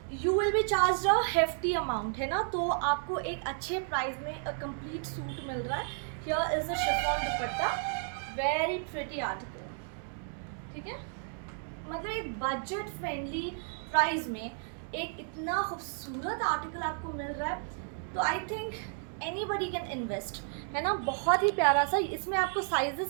you will be charge a hefty amount, है ना। तो आपको एक अच्छे प्राइस में अ कंप्लीट सूट मिल रहा है। Here is the chiffon dupatta, very pretty article, ठीक है। मतलब एक बजट फ्रेंडली प्राइस में एक इतना खूबसूरत आर्टिकल आपको मिल रहा है, तो I think anybody can invest, है ना। बहुत ही प्यारा सा। इसमें आपको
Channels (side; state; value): left; silent; 56 dB below the other